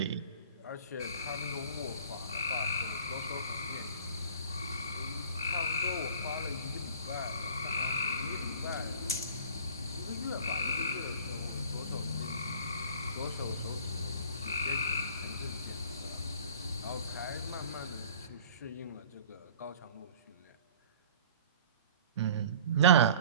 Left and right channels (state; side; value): inverted; both; correlation -0.45